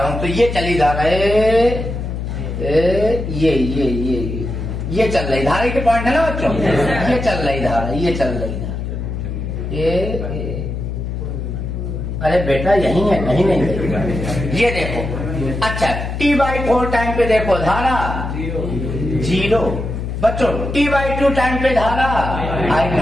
हूं। तो ये चली जा रहा है, ये चल रही धारा के पॉइंट है ना बच्चों, ये चल रही धारा, ये चल रही धारा, ये अरे बेटा यही है, कहीं नहीं है। ये देखो, अच्छा T/4 टाइम पे देखो धारा जीरो। बच्चों T/2 टाइम पे धारा आई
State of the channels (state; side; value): noise; left; hum, 5 dB below the sound